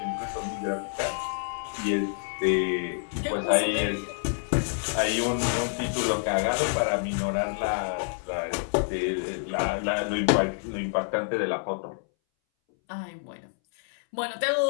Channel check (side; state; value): right; silent; 60 dB below the other